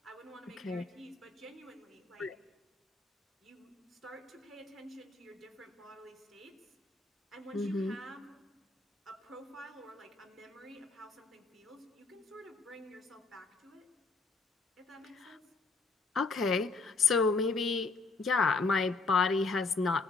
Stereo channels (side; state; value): right; quieter; 4.0 dB